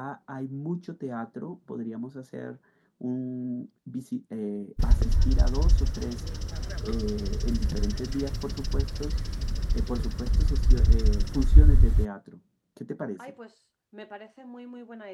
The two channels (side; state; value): both; identical; correlation 1.00